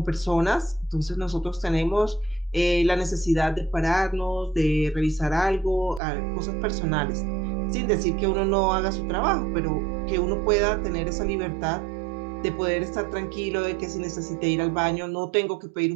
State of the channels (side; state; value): left; drops out; at 6.0 s